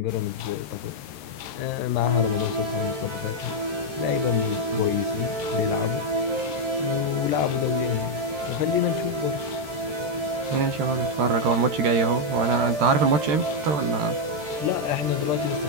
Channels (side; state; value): left; late; 13 ms